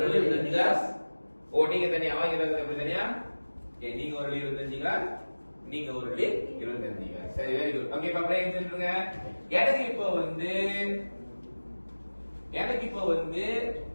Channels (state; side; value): inverted; both; correlation -1.00